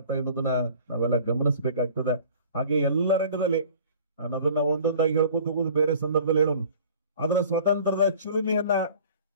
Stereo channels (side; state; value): both; inverted; correlation -0.47